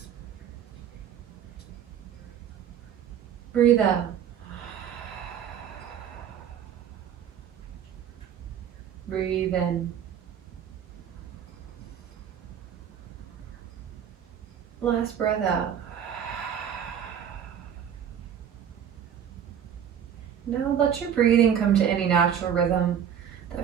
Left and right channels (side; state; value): left; quieter; 8.9 dB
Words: Breathe out. Breathe in. Last breath out. Now let your breathing come to any natural rhythm